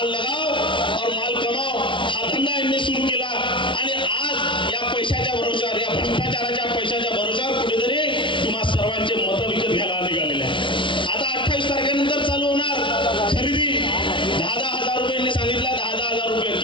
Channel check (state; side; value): late; right; 0.24 ms